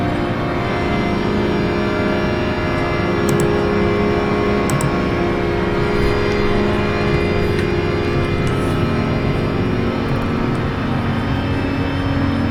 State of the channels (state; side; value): identical; both; correlation 1.00